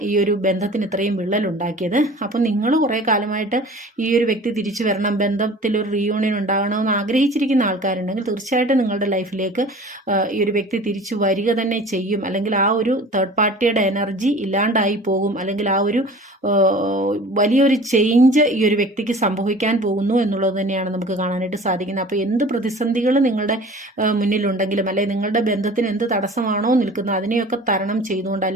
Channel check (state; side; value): normal; both; correlation 0.43